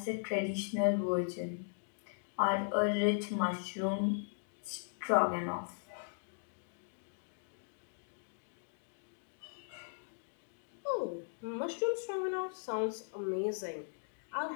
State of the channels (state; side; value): silent; right; digital silence